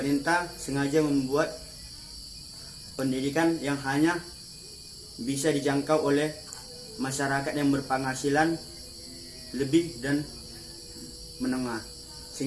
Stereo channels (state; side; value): identical; both; correlation 1.00